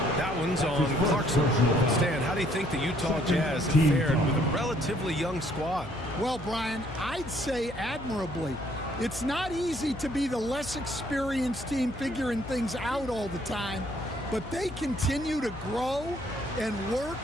That one's on Clarkson. Stan, how do you think the Utah Jazz have fared with a relatively young squad? Well, Brian, I'd say admirably. It's not easy to be the less experienced team figuring things out all the time, but they continue to grow and work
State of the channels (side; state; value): left; noise; hum, 14 dB below the sound